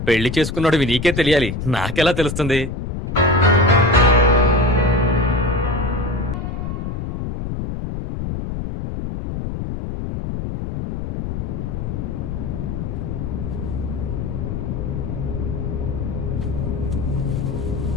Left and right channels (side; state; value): left; noise; rumble, 4 dB below the sound